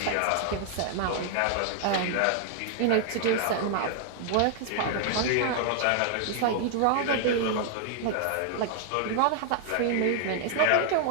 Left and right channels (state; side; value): different; both; correlation 0.00